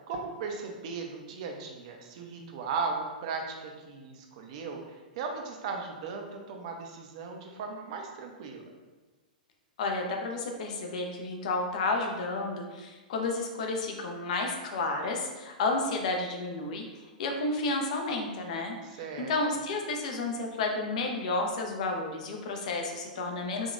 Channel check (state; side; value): normal; both; correlation -0.15